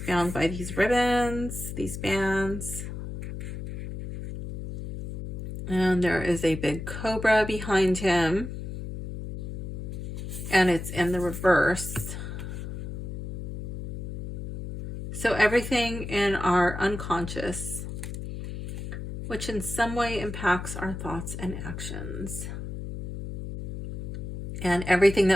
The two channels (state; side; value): noise; left; hum, 7 dB below the sound